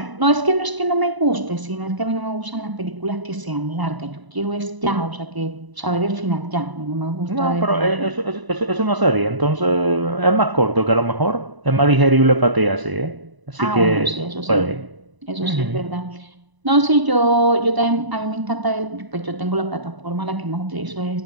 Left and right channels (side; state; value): left; late; 1.0 ms